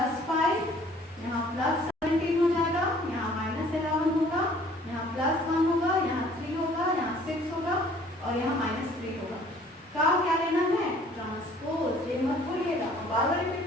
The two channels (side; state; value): both; normal; correlation 0.55